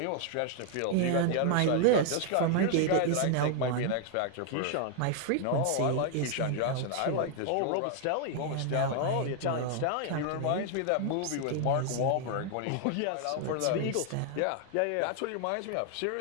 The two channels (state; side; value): different; both; correlation 0.00